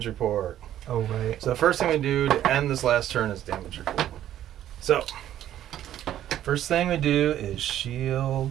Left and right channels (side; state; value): left; quieter; 11.8 dB